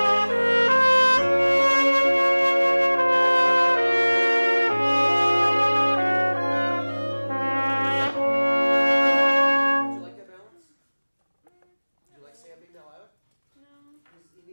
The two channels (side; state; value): both; inverted; correlation -1.00